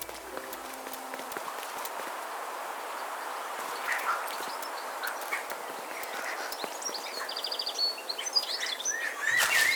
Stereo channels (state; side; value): identical; both; correlation 1.00